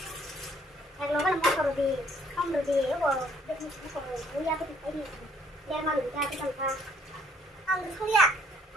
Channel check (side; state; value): both; normal; correlation 0.64